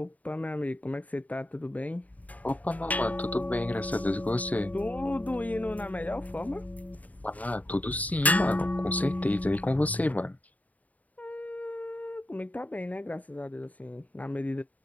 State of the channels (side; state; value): right; late; 0.072 ms